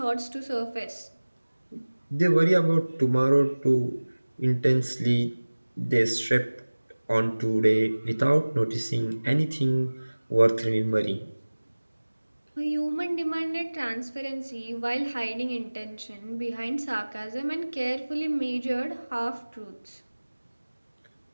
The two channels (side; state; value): both; inverted; correlation -1.00